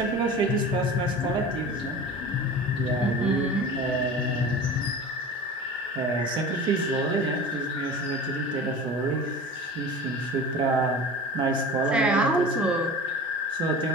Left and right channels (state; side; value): normal; both; correlation 0.36